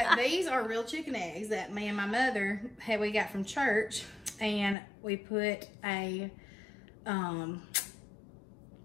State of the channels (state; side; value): drops out; right; at 4.8 s